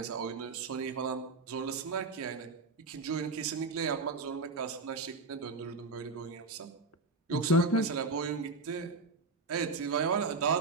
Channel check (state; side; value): quieter; left; 3.6 dB